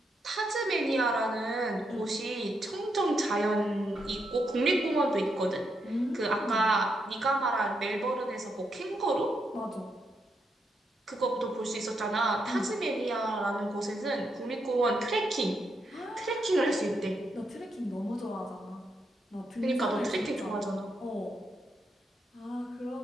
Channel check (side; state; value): both; normal; correlation 0.81